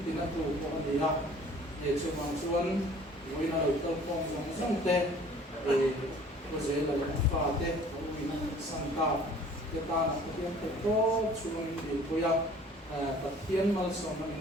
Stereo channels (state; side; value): normal; both; correlation 0.51